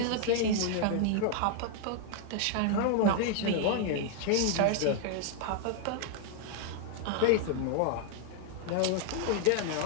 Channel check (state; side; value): different; both; correlation 0.00